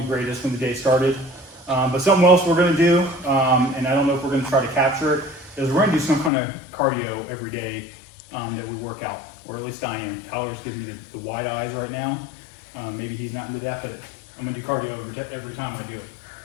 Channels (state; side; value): drops out; right; at 6.3 s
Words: greatest when the day started, but something else we're gonna do, and I don't know if we're gonna try to capture it, is we're gonna do some kind of cardio every day that we work out, or at least I am. Tyler's giving me the wide eyes right now. Maybe he's not into that, but I'm gonna do cardio every time I do it.